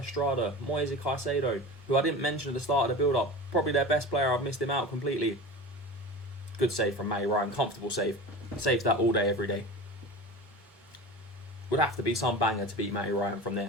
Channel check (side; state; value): both; normal; correlation 0.32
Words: Moise Caicedo, who I didn't mention at the start of the build-up. Probably their best player. I've missed him out completely. Good save from Matty Ryan. Comfortable save. Saves that all day, every day. Would have to be some banger to beat Matty Ryan from